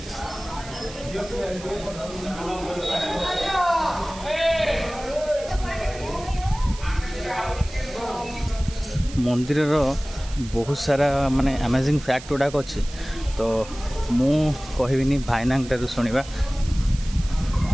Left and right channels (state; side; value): noise; right; hiss, 16 dB below the sound